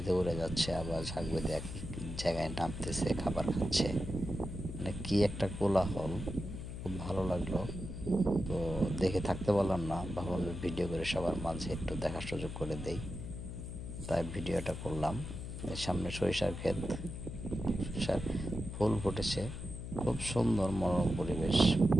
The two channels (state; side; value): noise; left; hum, 8 dB below the sound